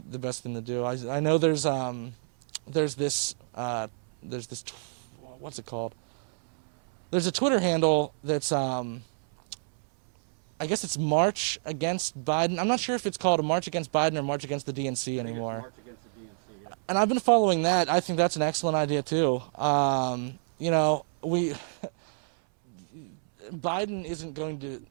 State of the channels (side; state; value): left; silent; 59 dB below the other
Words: best thing to do. I know there's this what's it called? There's a Twitter handle that's I guess it's March Against Biden. I'm not sure if it's called a March Against Biden or March Against the DNC anymore. March Against the DNC, yeah. And I've been following that. I think that's an excellent idea too. You know, Biden isn't going to.